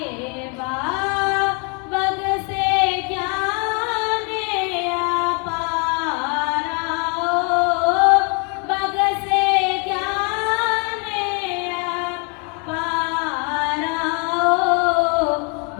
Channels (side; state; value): right; quieter; 33.1 dB